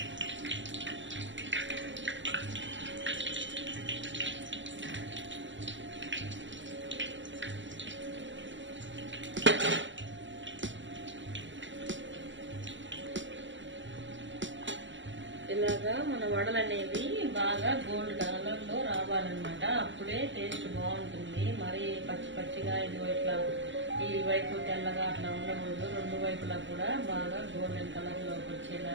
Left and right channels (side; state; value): left; late; 0.54 ms